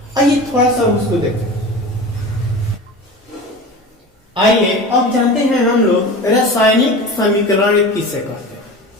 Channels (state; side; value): normal; both; correlation 0.33